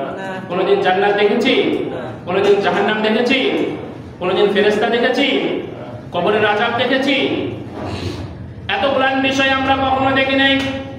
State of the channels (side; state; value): both; identical; correlation 1.00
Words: কোনোদিন জান্নাত দেখেছি? কোনোদিন জাহান্নাম দেখেছি? কোনোদিন ফেরেশতা দেখেছি? কবরের আযাব দেখেছি? এতগুলো বিষয় আমরা কখনো দেখি নাই।